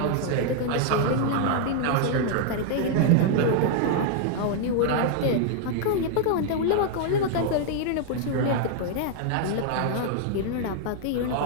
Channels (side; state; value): both; different; correlation 0.00